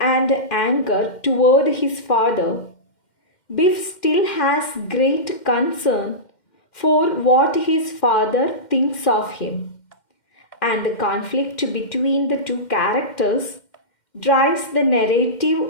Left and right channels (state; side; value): late; right; 2.1 ms